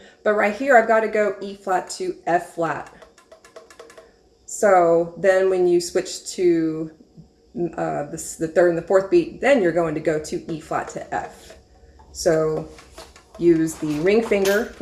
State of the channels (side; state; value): both; identical; correlation 1.00